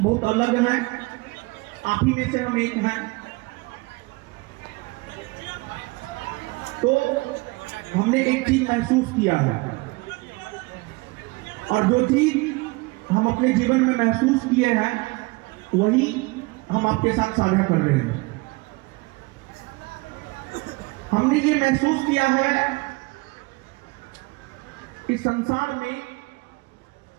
अलग हैं, आप ही में से हम एक हैं। तो हमने एक चीज महसूस किया है, और जो चीज हम अपने जीवन में महसूस किए हैं वही हम आपके साथ साझा कर रहे हैं। हमने ये महसूस किया है कि संसार में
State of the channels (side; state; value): left; quieter; 25.2 dB